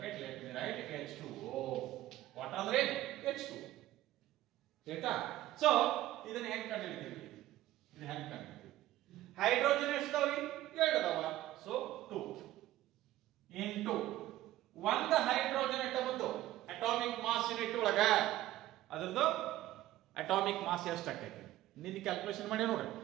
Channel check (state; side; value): quieter; left; 14.9 dB